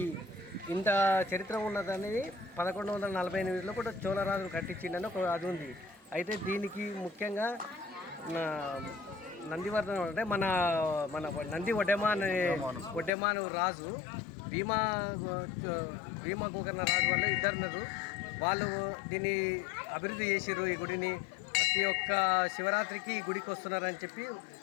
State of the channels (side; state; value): right; drops out; at 13.1 s